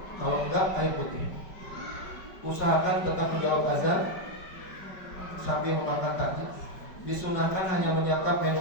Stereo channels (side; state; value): right; late; 5.1 ms